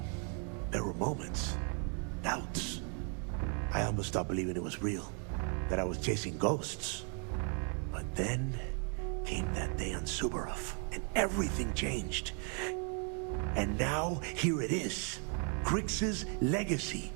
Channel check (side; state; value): left; quieter; 39.9 dB